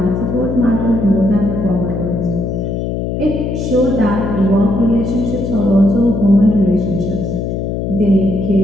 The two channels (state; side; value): noise; left; hum, 3 dB below the sound